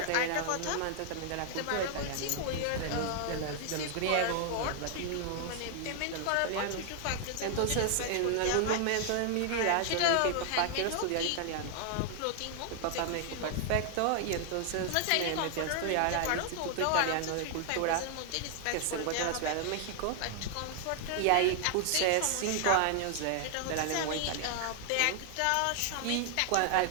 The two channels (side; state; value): both; different; correlation 0.00